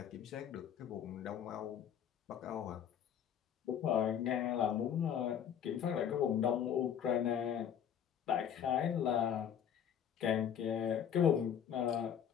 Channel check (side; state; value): right; quieter; 8.8 dB